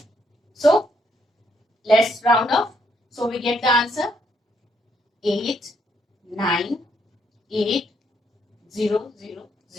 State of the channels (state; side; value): normal; both; correlation 0.74